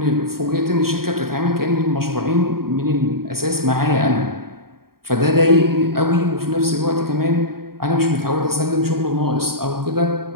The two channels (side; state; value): left; late; 0.93 ms